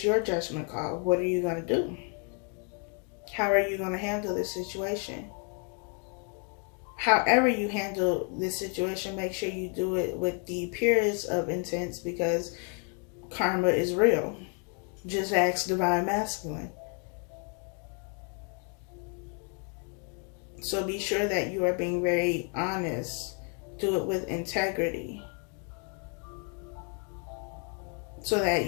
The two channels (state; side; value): quieter; right; 39.5 dB